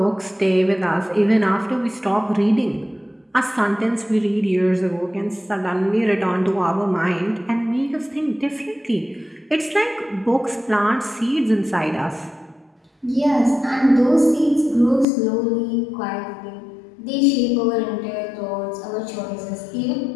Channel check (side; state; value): right; drops out; at 15.1 s